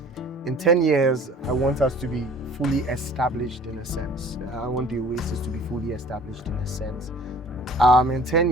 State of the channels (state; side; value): normal; both; correlation 0.49